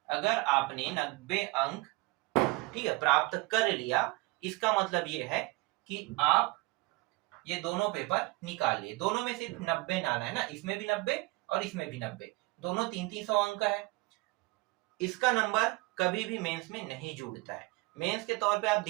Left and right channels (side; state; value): left; quieter; 23.8 dB